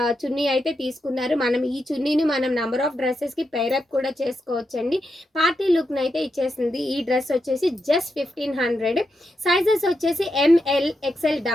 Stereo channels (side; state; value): both; normal; correlation 0.85